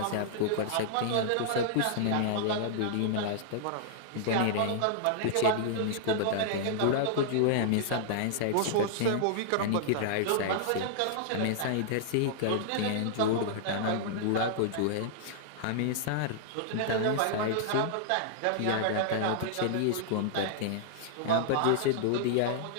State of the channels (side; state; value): both; different; correlation -0.01